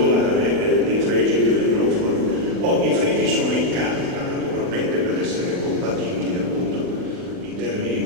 dei fregi che vengono fuori. I fregi sono in carta, naturalmente, per essere compatibili appunto in termini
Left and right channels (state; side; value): late; left; 40 ms